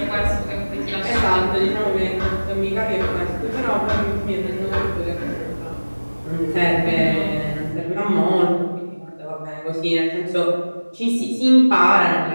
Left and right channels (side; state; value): both; inverted; correlation -1.00